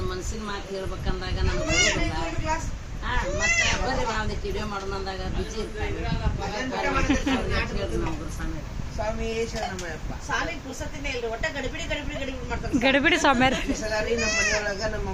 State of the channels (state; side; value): identical; both; correlation 1.00